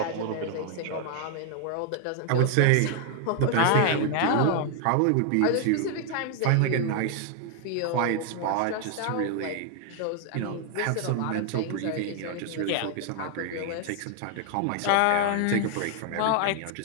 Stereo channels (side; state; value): both; different; correlation 0.00